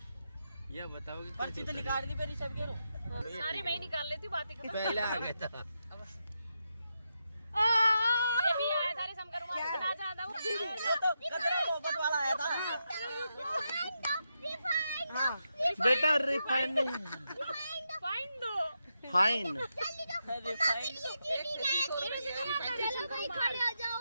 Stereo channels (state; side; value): inverted; both; correlation -0.85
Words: ये बताओ कि पर्ची तो निकाल दी मेरी सब के सारी मैं ही निकाल लेती बातें कर। पहले आ गया था। ये भी आया था रे शंकर मामा इतना ज्यादा वो तो कचरा मोहब्बत वाला आया था। बेटा रिफाइंड नहीं, फाइन दो। फाइन। रिफाइंड चलो भाई खड़े हो जाओ